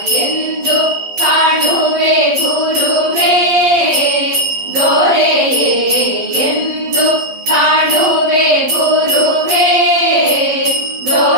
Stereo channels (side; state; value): left; late; 11 ms